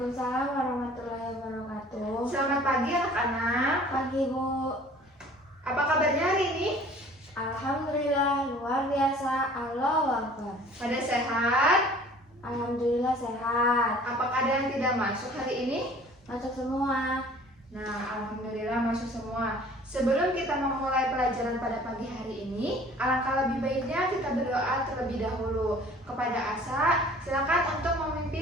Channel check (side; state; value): both; normal; correlation 0.50